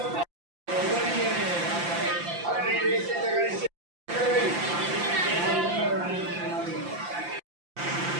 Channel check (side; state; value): left; late; 5.8 ms